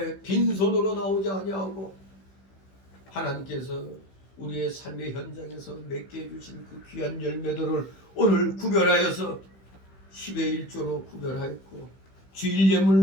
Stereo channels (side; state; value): right; late; 16 ms